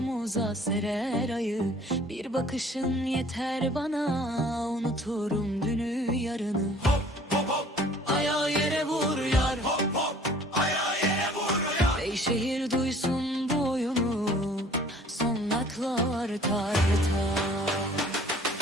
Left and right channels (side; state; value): both; normal; correlation 0.52